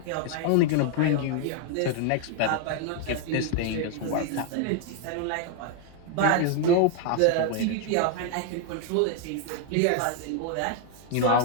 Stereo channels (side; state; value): both; different; correlation 0.00